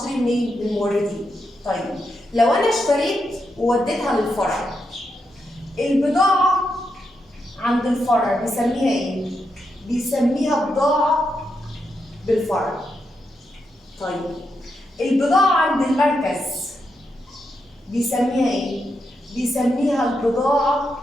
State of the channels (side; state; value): both; normal; correlation 0.84